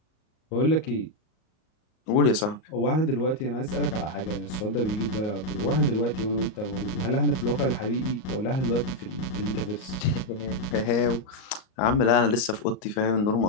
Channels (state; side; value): late; right; 38 ms